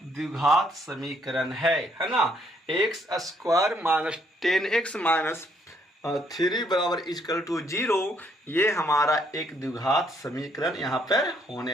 द्विघात समीकरण है ना। X square minus 10x minus 3 बराबर इक्वल टू 0, ये हमारा एक द्विघात समीकरण यहाँ पर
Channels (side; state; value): both; normal; correlation 0.70